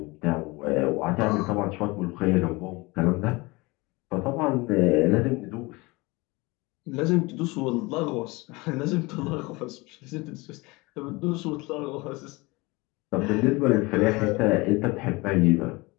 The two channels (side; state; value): right; quieter; 24.1 dB